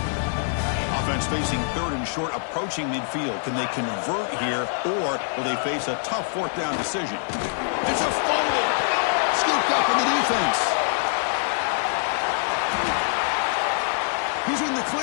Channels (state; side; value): silent; right; digital silence